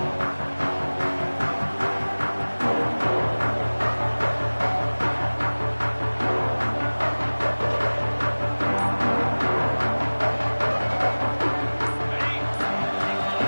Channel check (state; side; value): inverted; both; correlation -1.00